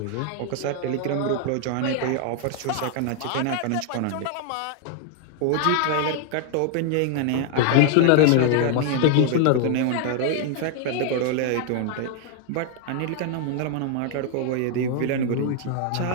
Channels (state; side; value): different; both; correlation 0.00